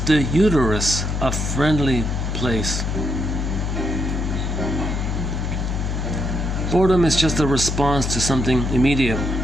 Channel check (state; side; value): noise; left; hum, 2 dB below the sound